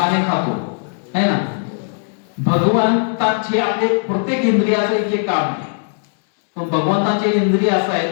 खातो, है ना? भगवंताचे आपले प्रत्येक इंद्रियाचं एक काम आहे. पण भगवंताचे इंद्रिय असं आहे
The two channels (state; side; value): silent; right; digital silence